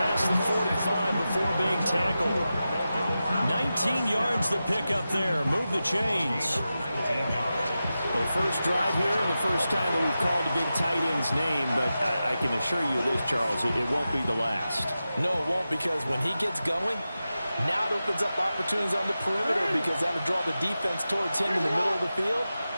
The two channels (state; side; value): inverted; both; correlation -0.92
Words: the 45 before being tackled. 19 yards to pick up there. Move the chains. The first drive here, and the first time that we've called a big tight end's name, but I can assure you this, Charles, it won't be the last. No, it won't, because when he gets going, now it opens up opportunities on the perimeter, because that'll draw the defense towards him in the middle of the field.